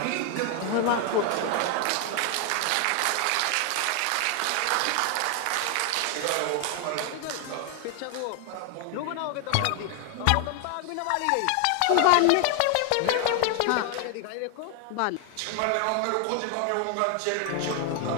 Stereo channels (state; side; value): different; both; correlation 0.00